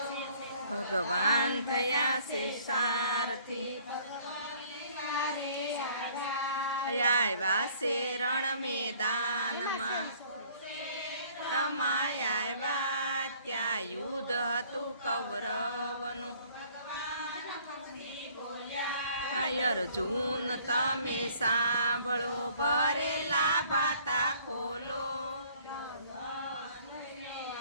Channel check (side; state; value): both; inverted; correlation -0.57